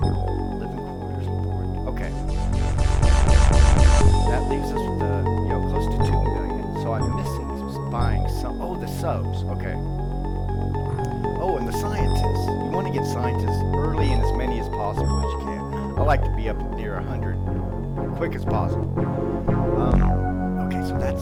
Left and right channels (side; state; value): both; identical; correlation 1.00